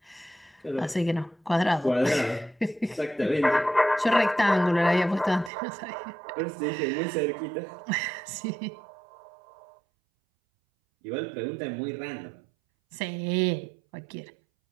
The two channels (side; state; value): left; drops out; at 5.5 s